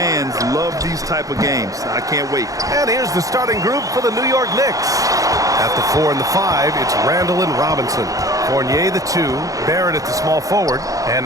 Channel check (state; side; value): late; left; 0.17 ms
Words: love these type of games. I can't wait. And here's the starting group for the New York Knicks. At the 4 and the 5, it's Randall and Robinson. Fournier, the 2, Barrett at the small forward,